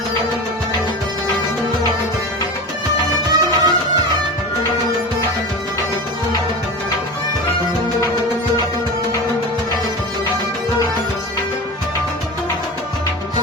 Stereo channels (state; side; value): normal; both; correlation 0.29